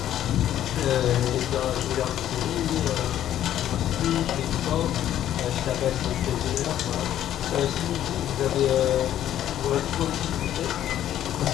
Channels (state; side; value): quieter; right; 11.6 dB